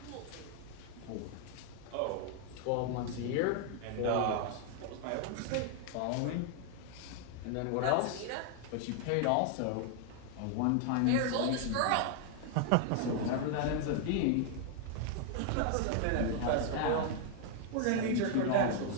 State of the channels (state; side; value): different; both; correlation 0.00